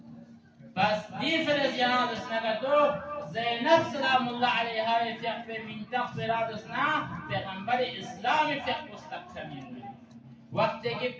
بس دي فرزيان اسنقدو زينب سلام الله عليها يفيق من تغفر اسنا پیغمبر اسلام يفيق مستقيمين وقت کہ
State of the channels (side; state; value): both; identical; correlation 1.00